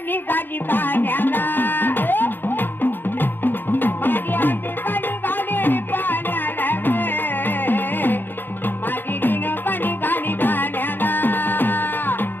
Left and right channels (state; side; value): late; right; 0.097 ms